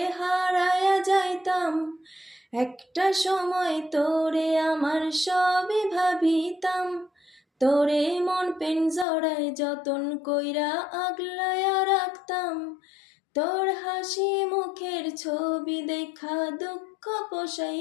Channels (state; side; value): drops out; right; at 9.1 s